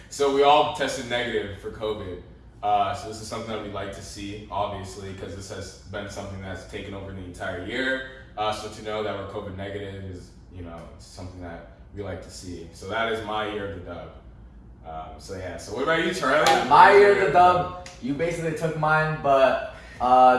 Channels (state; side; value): identical; both; correlation 1.00